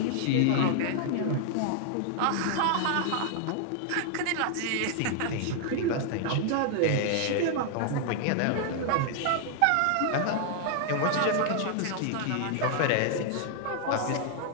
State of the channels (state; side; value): different; both; correlation 0.00